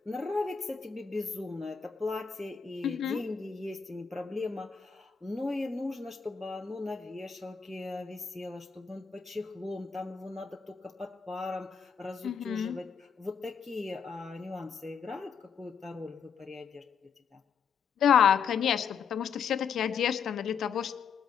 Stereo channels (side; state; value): right; quieter; 6.5 dB